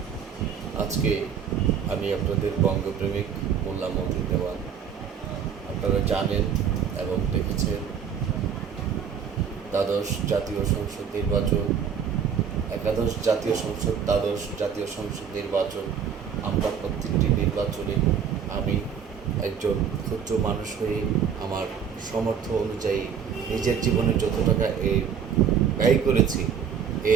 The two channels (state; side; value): quieter; left; 7.5 dB